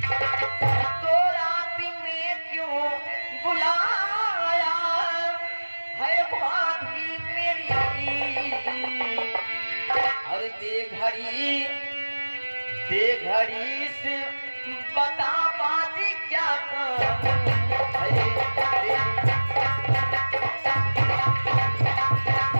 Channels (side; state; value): both; inverted; correlation -1.00